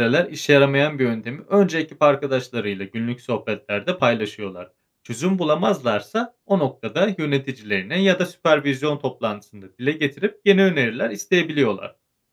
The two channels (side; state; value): both; identical; correlation 1.00